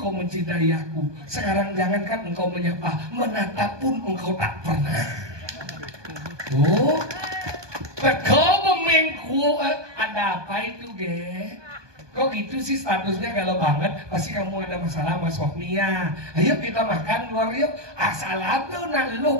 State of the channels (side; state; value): left; late; 1.2 ms